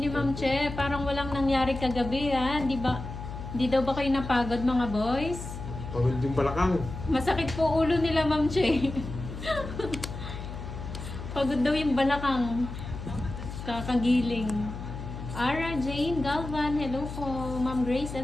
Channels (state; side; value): noise; left; hum, 9 dB below the sound